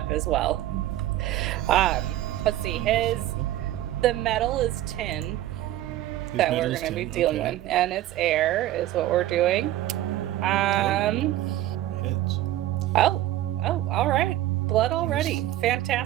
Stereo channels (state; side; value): quieter; left; 14.2 dB